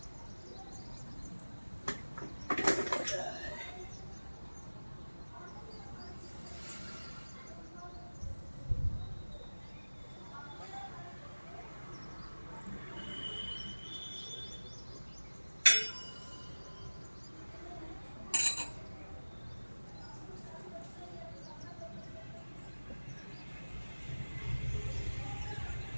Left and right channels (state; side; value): inverted; both; correlation -1.00